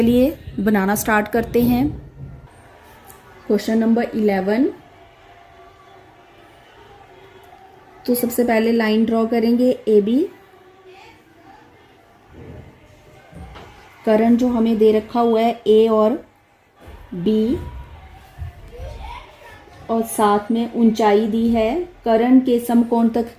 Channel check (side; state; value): both; identical; correlation 1.00